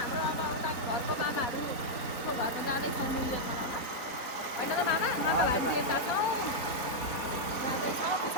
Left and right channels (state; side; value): late; right; 4.0 ms